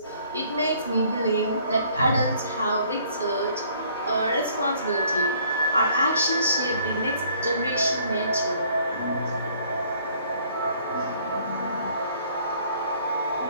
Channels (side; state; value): both; inverted; correlation -0.60